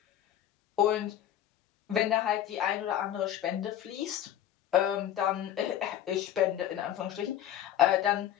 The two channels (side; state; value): right; quieter; 11.1 dB